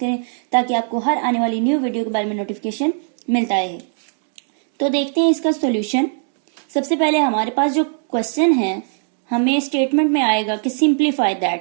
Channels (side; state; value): left; silent; 66 dB below the other